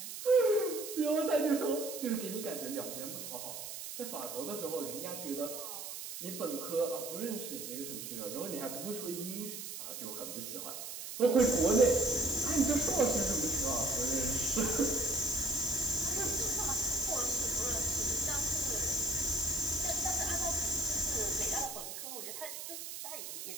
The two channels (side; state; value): right; noise; hiss, 8 dB below the sound